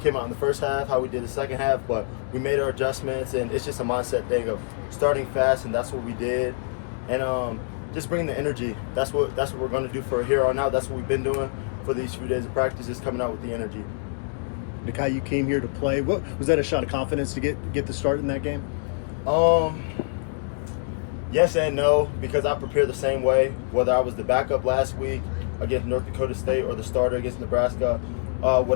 out in the first half how we did the second half, but we made our adjustments, and it's just a mindset thing of starting fast, and that's what we did. And just bringing the energy. That's what we're going to do for here on out. That's what we've been doing for these few days of practice, is coming out with the energy. Nikhai, you came here to play. What was that, a shot of confidence to get the start in that game? Yes and no, because I prepare the same way, whether I was the backup last week against North Dakota State or the starter against Nebraska.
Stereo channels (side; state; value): right; silent; digital silence